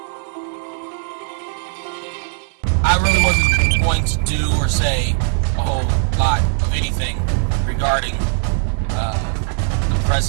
I really wasn't going to do or say a whole lot of anything regarding the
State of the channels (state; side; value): silent; left; 67 dB below the other